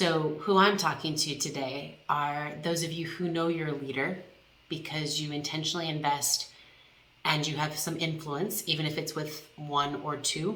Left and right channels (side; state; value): both; identical; correlation 1.00